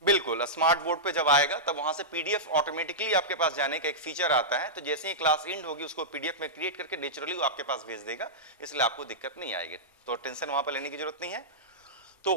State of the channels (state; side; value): normal; both; correlation -0.13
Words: बिल्कुल, स्मार्ट बोर्ड पे जब आएगा तब वहां से पीडीएफ ऑटोमेटिकली आपके पास जाने का एक फीचर आता है, तो जैसे ही क्लास एंड होगी उसको पीडीएफ में क्रिएट करके नेचुरली वो आपके पास भेज देगा, इसलिए आपको दिक्कत नहीं आएगी, तो टेंशन वहां पर लेने की जरूरत नहीं है। तो